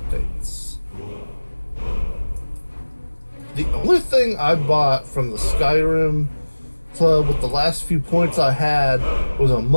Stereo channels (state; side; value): inverted; both; correlation -1.00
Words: The only thing I bought from the Skyrim club with the last few points I had was a